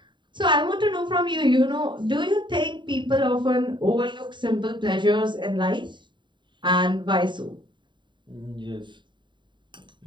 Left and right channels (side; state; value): left; late; 0.23 ms